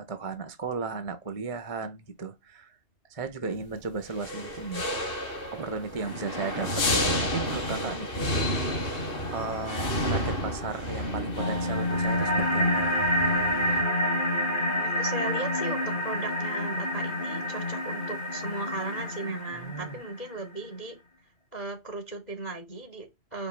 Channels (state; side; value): late; right; 2.6 ms